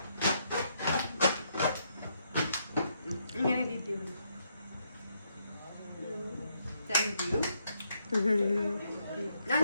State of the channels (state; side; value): inverted; both; correlation -0.76